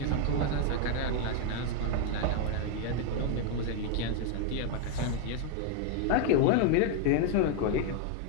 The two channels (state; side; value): different; both; correlation 0.01